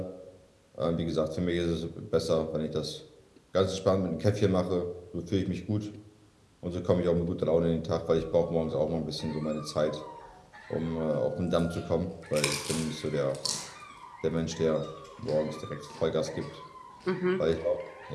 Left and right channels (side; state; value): both; identical; correlation 1.00